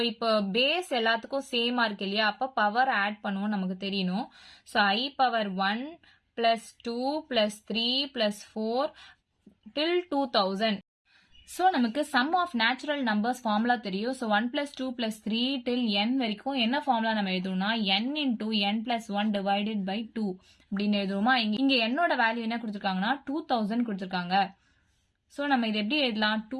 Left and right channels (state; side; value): identical; both; correlation 1.00